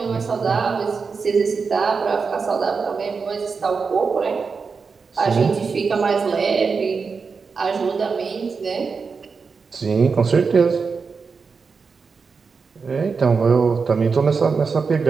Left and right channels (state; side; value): quieter; left; 5.1 dB